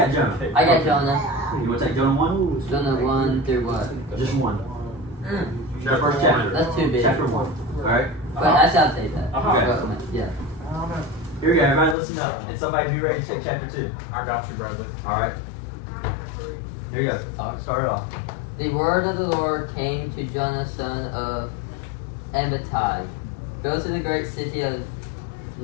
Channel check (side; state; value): right; drops out; at 12.0 s